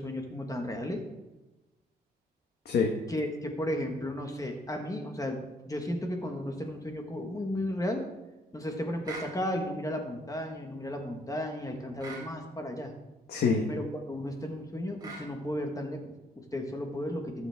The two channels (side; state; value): both; normal; correlation 0.67